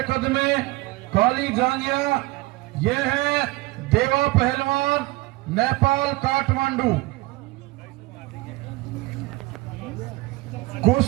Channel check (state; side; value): quieter; left; 21.2 dB